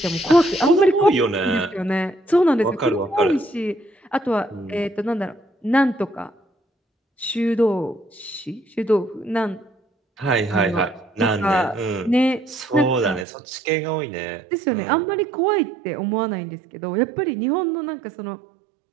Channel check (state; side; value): drops out; left; at 13.2 s